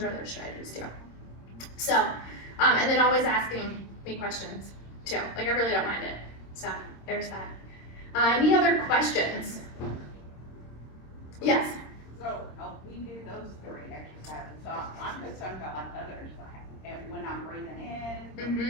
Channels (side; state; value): right; late; 26 ms